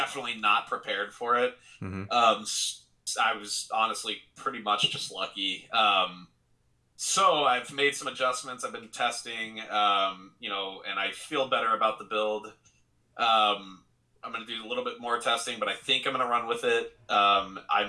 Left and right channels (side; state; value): both; identical; correlation 1.00